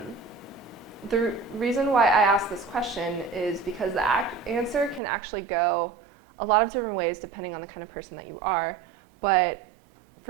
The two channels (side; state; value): left; drops out; at 5.0 s